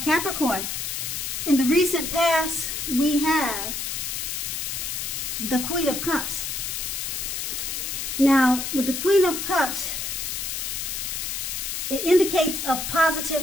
in the recent past, we have the Queen of Cups. Now, with the Queen of Cups, it indicates a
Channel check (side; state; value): left; noise; hiss, 3 dB below the sound